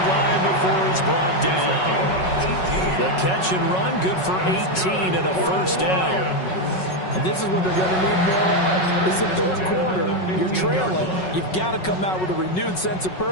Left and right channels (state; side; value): late; right; 5.4 ms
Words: line before he's brought down. The catch and run, good for 18 and a first down. And this is what they're going to need more of. It's the third quarter. You're trailing. You've got to come out with a renewed sense of